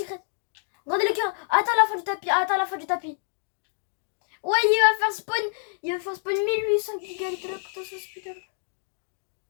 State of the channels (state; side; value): silent; right; digital silence